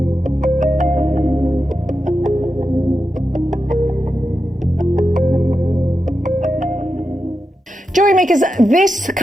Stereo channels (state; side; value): normal; both; correlation 0.89